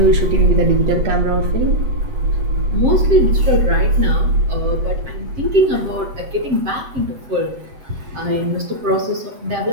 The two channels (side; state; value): left; late; 7.5 ms